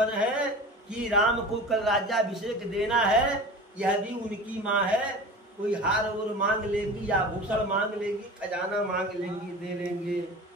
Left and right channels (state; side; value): normal; both; correlation 0.36